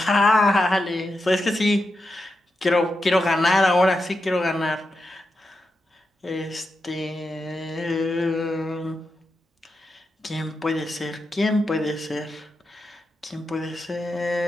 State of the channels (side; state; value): both; normal; correlation 0.88